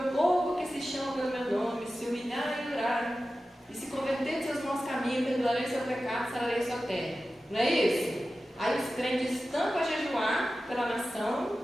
povo que se chama pelo meu nome se humilhar e orar e se converter de seus maus caminhos, perdoarei seu pecado, sararei sua terra. Não é isso? Aí os crentes estão para jejuar pela nação,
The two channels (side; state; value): both; normal; correlation 0.94